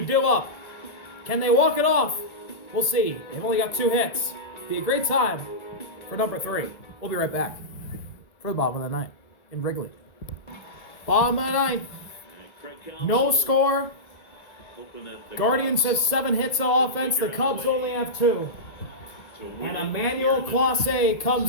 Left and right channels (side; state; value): right; late; 1.7 ms